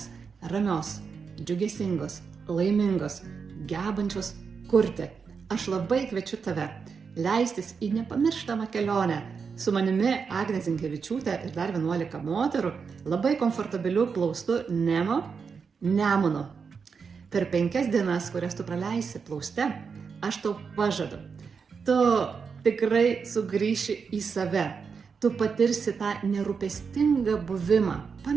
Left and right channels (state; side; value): quieter; left; 5.7 dB